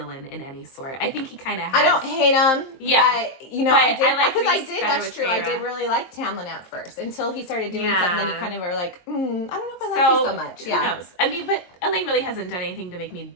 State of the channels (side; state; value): right; late; 22 ms